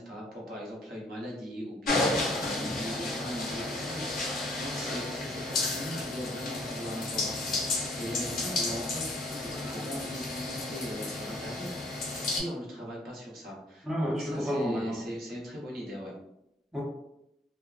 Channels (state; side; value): normal; both; correlation 0.62